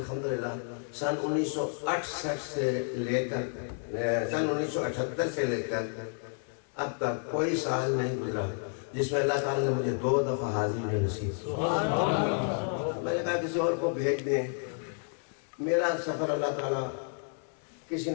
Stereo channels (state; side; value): silent; right; 57 dB below the other